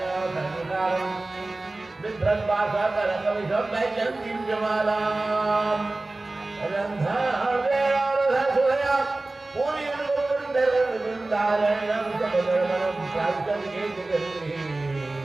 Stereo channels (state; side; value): quieter; left; 3.0 dB